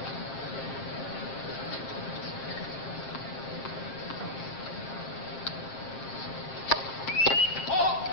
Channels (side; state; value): right; late; 7.5 ms